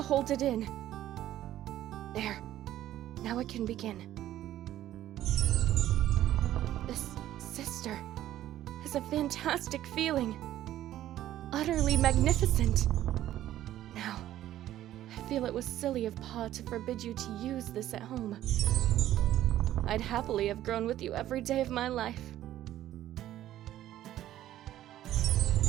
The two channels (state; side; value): quieter; left; 13.1 dB